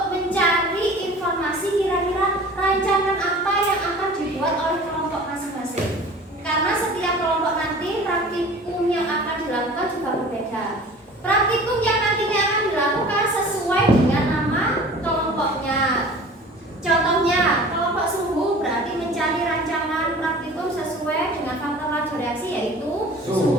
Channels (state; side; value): normal; both; correlation 0.43